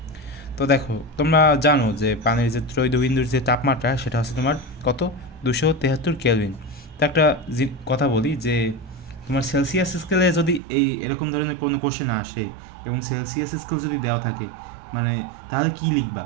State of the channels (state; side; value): drops out; left; at 10.6 s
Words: তো দেখো, তোমরা জানো যে পানির যে ত্রৈধবিন্দুর যে তাপমাত্রা সেটা হচ্ছে তোমার কত, 273 কেলভিন। তো একটা কথা বলি যে তোমার সেলসিয়াস স্কেলে যদি এরকম ধরনের কোনো কোশ্চেন আসে এবং সেলসিয়াস স্কেল যদি দেওয়া থাকে, মানে তাহলে কী লিখবা?